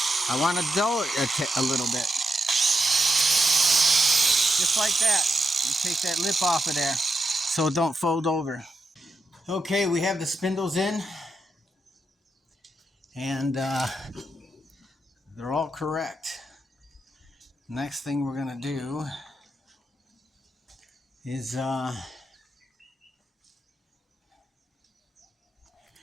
want to dull it a little bit. Just like that. You take that lip off of there so it don't fold over. Okay, we have the spindles in. And they're all correct. Next thing we're going to do is we're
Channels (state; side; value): normal; both; correlation 0.84